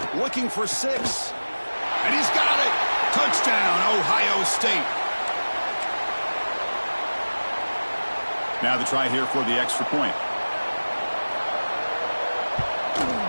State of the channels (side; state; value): both; inverted; correlation -1.00